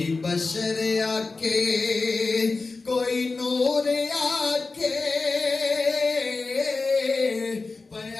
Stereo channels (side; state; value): right; quieter; 3.9 dB